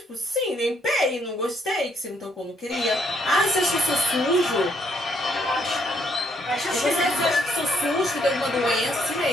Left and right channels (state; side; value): normal; both; correlation 0.70